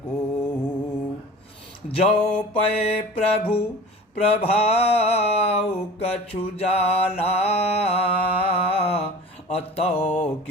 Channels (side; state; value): both; normal; correlation 0.39